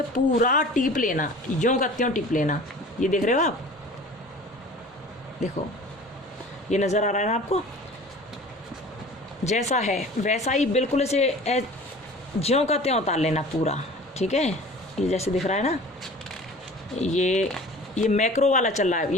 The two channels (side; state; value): both; normal; correlation 0.43